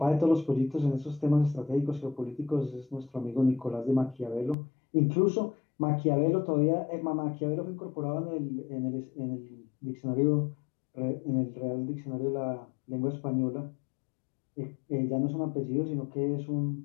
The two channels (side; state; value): right; drops out; at 4.5 s